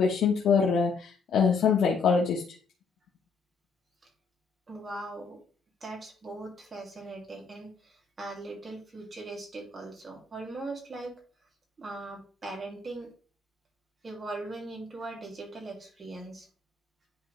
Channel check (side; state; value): right; quieter; 4.7 dB